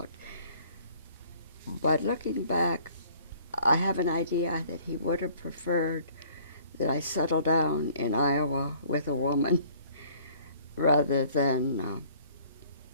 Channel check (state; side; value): inverted; both; correlation -0.56